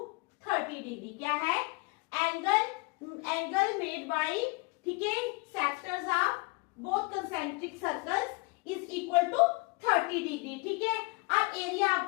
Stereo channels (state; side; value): quieter; right; 27.4 dB